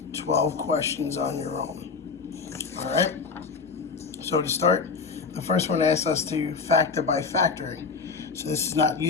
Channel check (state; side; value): quieter; right; 4.9 dB